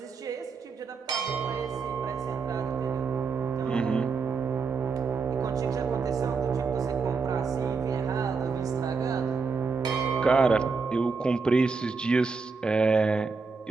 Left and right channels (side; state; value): left; quieter; 4.8 dB